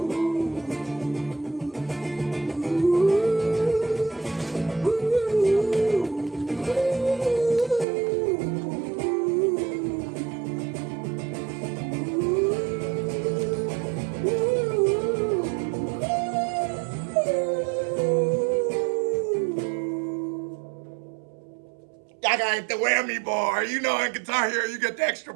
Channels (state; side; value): drops out; left; at 7.9 s